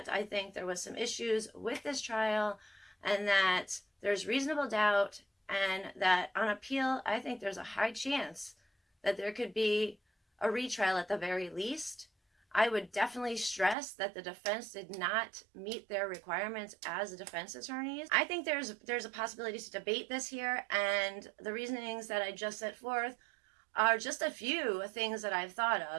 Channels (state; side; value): drops out; left; at 13.8 s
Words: I think there was some issues with this trial, and that there's reasonable doubt, and that on appeal, I think there's a high chance that there could be a retrial at the very least. I would definitely stress that the defense did not meet their requirements as defense attorneys. I think there's a possibility to debate this here, and the reasonings that I just set forth are just a few things that I've thought